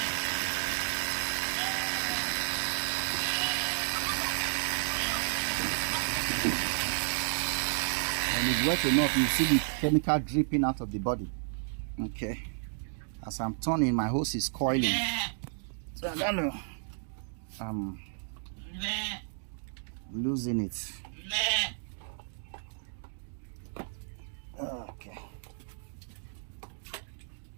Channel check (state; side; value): silent; left; digital silence